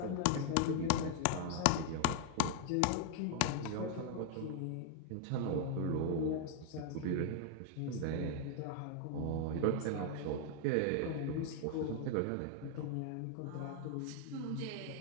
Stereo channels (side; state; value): both; different; correlation 0.00